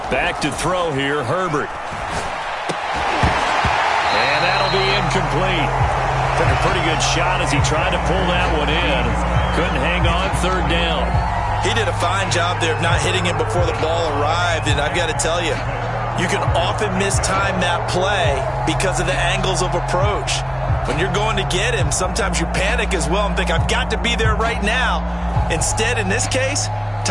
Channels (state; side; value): identical; both; correlation 1.00